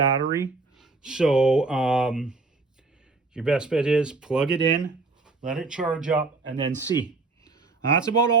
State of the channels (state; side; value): quieter; left; 3.7 dB